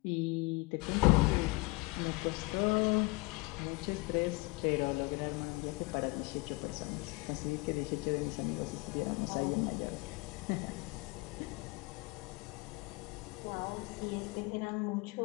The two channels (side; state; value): right; quieter; 25.4 dB